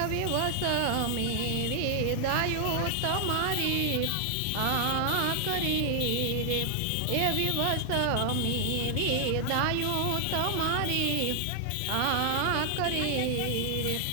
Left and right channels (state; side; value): different; both; correlation 0.00